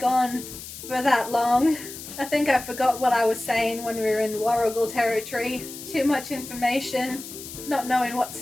on for that long. I think I forgot what I was saying when we were in Warrigal territory. Too much information, not knowing what to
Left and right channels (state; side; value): noise; left; hiss, 12 dB below the sound